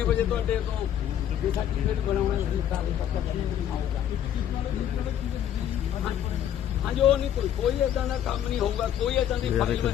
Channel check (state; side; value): quieter; right; 10.3 dB